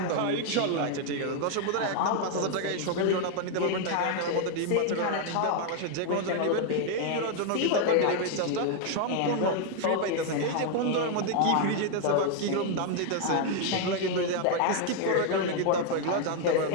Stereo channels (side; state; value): both; different; correlation 0.00